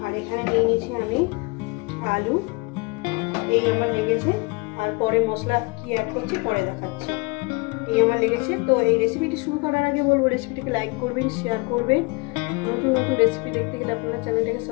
আর এখানে নিয়ে নিয়েছি আমি আলু, এই আমার লেগেছে। আর পরে মশলা কি অ্যাড করছি পরে দেখাচ্ছি। এই আমার লেগেছে। তো এই রেসিপিটি শুরু করার আগে বলবো রেসিপিটিকে লাইক করবেন, শেয়ার করবেন। নতুন নতুন রেসিপি দেখতে গেলে আপনারা চ্যানেলটাকে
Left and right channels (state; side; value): quieter; right; 28.3 dB